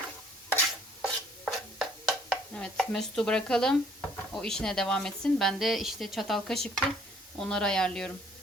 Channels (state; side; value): normal; both; correlation 0.60